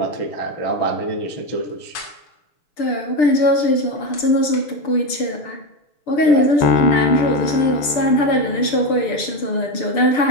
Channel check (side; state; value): right; late; 6.8 ms